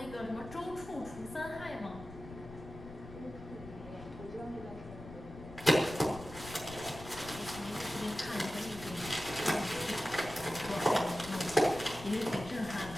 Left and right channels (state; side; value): noise; left; rumble, 14 dB below the sound